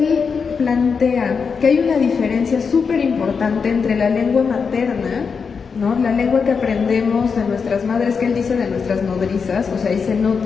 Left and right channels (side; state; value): right; quieter; 5.7 dB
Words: plantea que hay una diferencia súper importante entre la lengua materna, ¿no? La lengua que aprendemos de nuestras madres, que él dice de nuestras nodrizas, o sea, ahí se